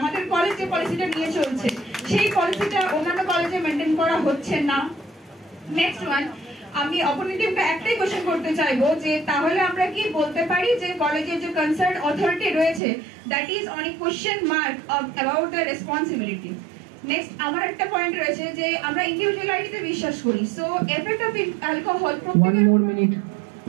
আমাদের কলেজ যে পলিসিটা নিয়ে চলছে সেই পলিসিটা অন্যান্য কলেজে মেনটেন করা হচ্ছে না? নেক্সট ওয়ান, আমি অপোনেন্ট টিমকে একটাই কোশ্চেন করতে চাইবো যে তাহলে আমরা কি বলতে পারি যে কলেজের যে কনসার্ন অথরিটি রয়েছে that is on a question mark about the responsibility. Next আমার একটা পয়েন্ট রয়েছে যে আমরা ইন্ডিভিজুয়ালিটিতে বিশ্বাস করি, সো এফেক্ট অফ অ্যালকোহল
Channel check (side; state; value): left; drops out; at 12.8 s